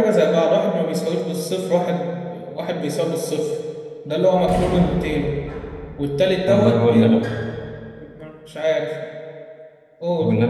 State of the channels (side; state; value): both; identical; correlation 1.00